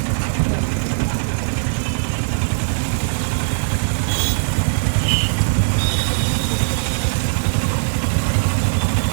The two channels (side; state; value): left; silent; digital silence